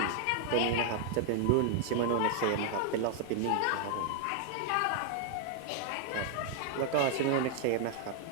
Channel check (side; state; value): both; different; correlation 0.00